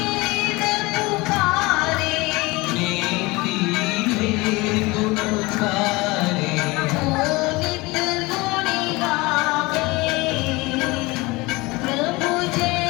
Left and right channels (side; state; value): right; quieter; 23.1 dB